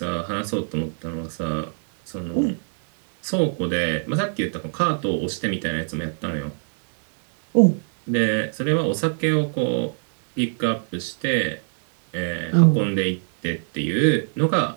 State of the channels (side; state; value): left; silent; digital silence